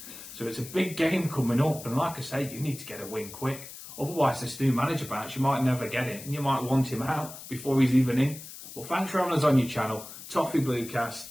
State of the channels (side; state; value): left; noise; hiss, 14 dB below the sound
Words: So it's a big game coming up. And like I say, you need to get a win quick. Otherwise, this new manager bounce, you might never get it. And you might want him out before he's even in. Well, thanks for having us on your channel. Toffee Bluecast.